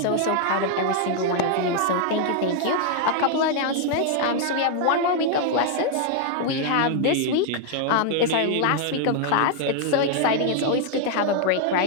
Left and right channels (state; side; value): different; both; correlation 0.00